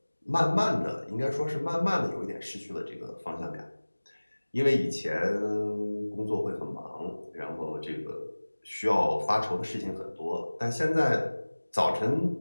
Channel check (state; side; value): inverted; both; correlation -1.00